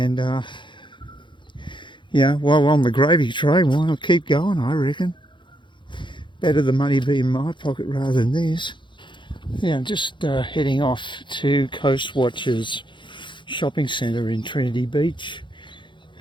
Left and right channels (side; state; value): right; late; 0.23 ms